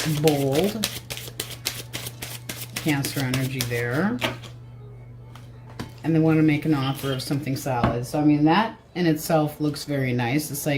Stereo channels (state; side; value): identical; both; correlation 1.00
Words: bold. Cancer energy there. And they want to make an offer of something solid. So I mean, that in itself looks very nice. It's